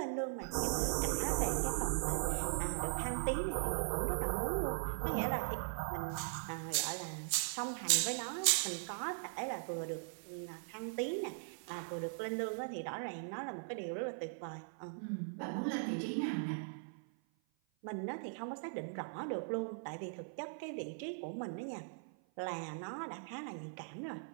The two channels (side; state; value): left; silent; 51 dB below the other